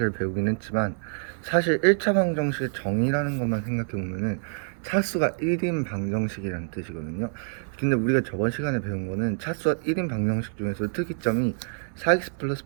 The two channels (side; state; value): left; silent; digital silence